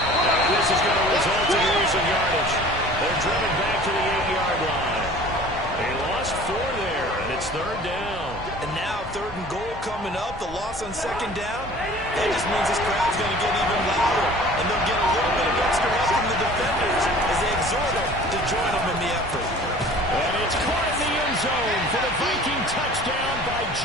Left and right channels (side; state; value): both; normal; correlation 0.46